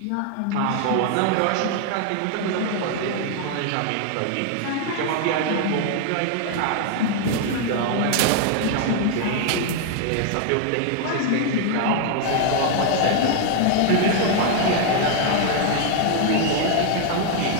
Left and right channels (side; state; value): both; different; correlation 0.00